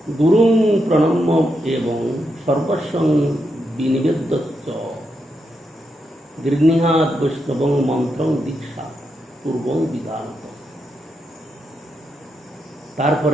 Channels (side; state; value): both; normal; correlation 0.83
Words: গুরুং প্রণম্য এবং সর্বস্বং বিনিবেদ্য গৃহীহাত বৈষ্ণবং মন্ত্রং দীক্ষা পূর্বং বিধানত।